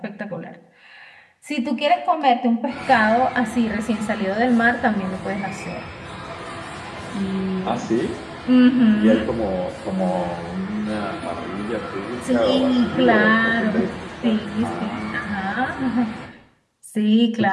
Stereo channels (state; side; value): identical; both; correlation 1.00